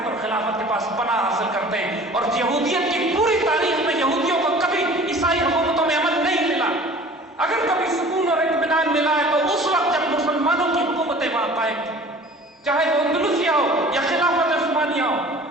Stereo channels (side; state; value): both; normal; correlation 0.45